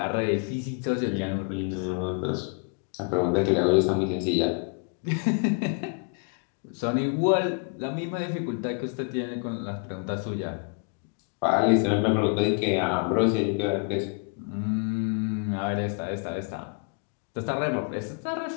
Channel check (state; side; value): quieter; right; 38.8 dB